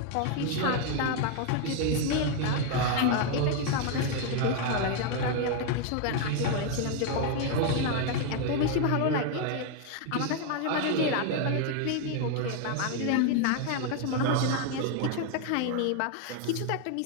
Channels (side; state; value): both; different; correlation 0.01